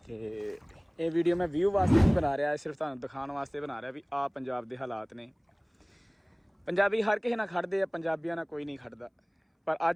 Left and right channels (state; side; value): identical; both; correlation 1.00